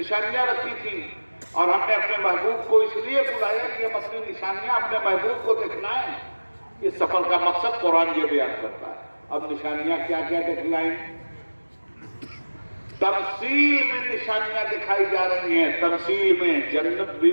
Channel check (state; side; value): inverted; both; correlation -1.00